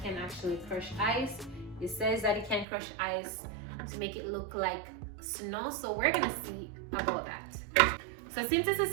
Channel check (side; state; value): left; drops out; at 2.7 s